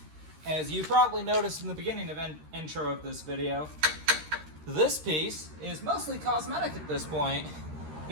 As you probably noticed in the beginning of intro of this video, this piece is mostly cosmetic at this point,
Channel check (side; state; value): left; late; 13 ms